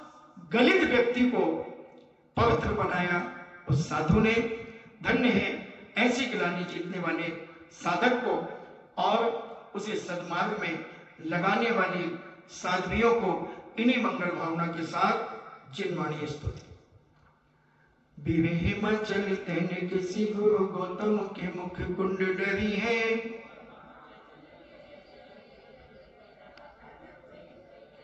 गलित व्यक्ति को पवित्र बनाया उस साधु ने। धन्य है ऐसी गिलानी जीतने वाले साधक को और उसे सद्मार्ग में लगाने वाली साध्वियों को। इन्हीं मंगल भावना के साथ जिनवाणी स्तुति। विवेह मचल तेने किसी गुरु गौतम के मुख कुंड डरी है,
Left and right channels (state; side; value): identical; both; correlation 1.00